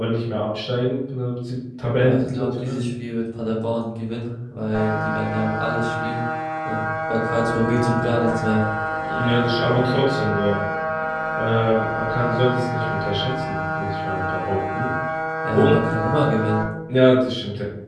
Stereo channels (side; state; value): both; identical; correlation 1.00